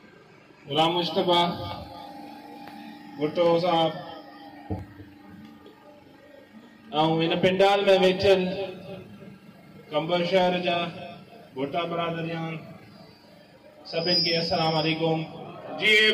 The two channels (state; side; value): identical; both; correlation 1.00